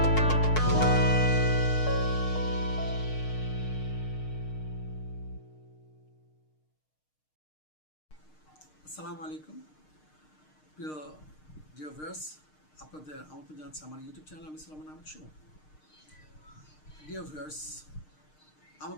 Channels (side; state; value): right; late; 6.5 ms